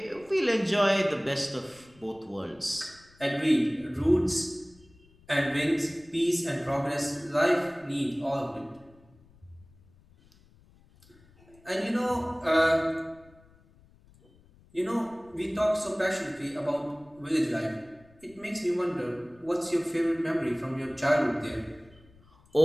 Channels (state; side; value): noise; left; rumble, 28 dB below the sound